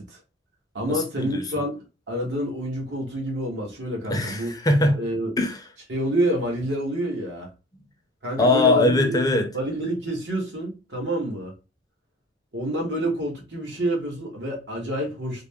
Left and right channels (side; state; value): both; normal; correlation 0.43